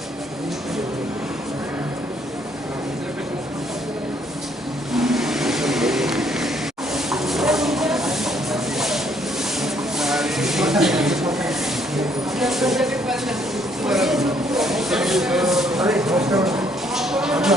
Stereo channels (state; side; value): normal; both; correlation 0.67